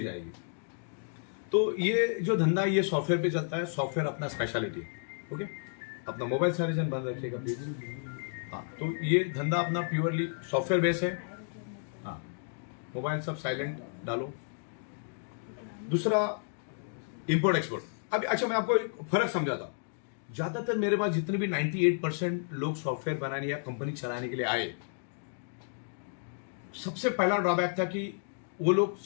जाएगी। तो ये जो धंधा है ये सॉफ्टवेयर पे चलता है, सॉफ्टवेयर अपना स्पेशलिटी है। ओके, अपना मोबाइल सारे जन बंद रखिएगा प्लीज। हाँ, तो ये धंधा अपना प्योरली सॉफ्टवेयर बेस है। हाँ, मोबाइल सब साइलेंट डालो। दूसरा, इंपोर्ट एक्सपोर्ट। अभी अच्छा मैं आपको एक फर्क समझाता। ज्यादातर मेरे पास जितने भी 98% लोग सॉफ्टवेयर बनाने या कंपनी चलाने के लिए आए, सबसे पहला ड्रॉबैक था कि वो लोग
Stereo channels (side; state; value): right; silent; digital silence